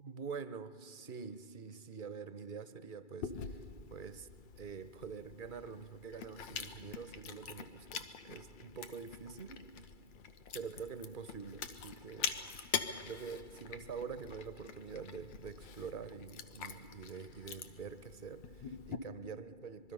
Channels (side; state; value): right; late; 2.3 ms